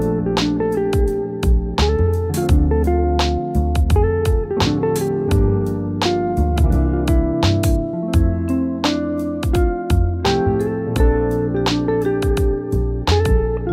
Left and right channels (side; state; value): both; identical; correlation 1.00